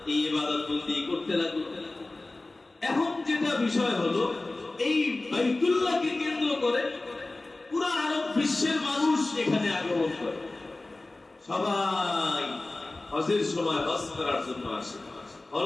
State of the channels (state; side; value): quieter; right; 3.0 dB